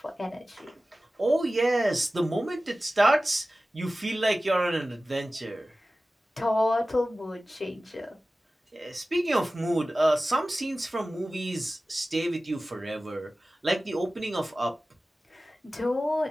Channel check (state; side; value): normal; both; correlation 0.96